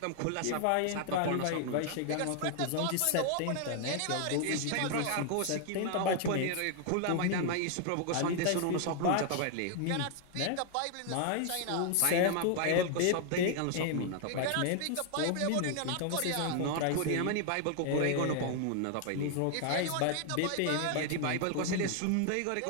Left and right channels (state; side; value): different; both; correlation 0.00